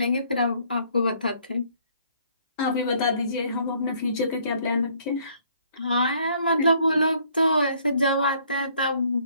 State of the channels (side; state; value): both; inverted; correlation -0.63